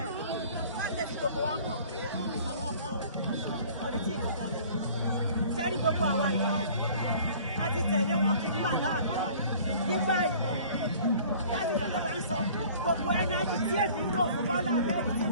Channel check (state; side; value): inverted; both; correlation -0.49